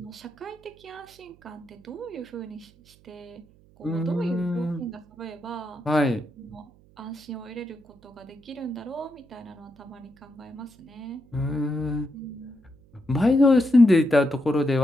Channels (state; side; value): noise; right; hum, 28 dB below the sound